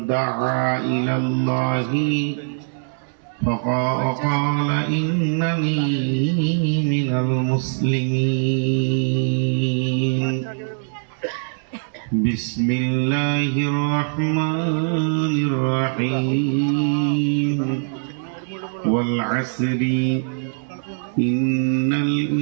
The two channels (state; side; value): silent; left; digital silence